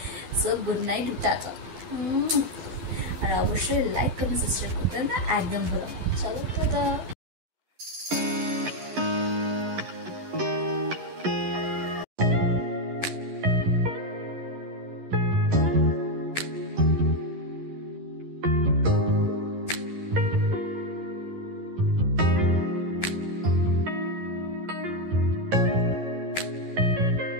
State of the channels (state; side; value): late; left; 11 ms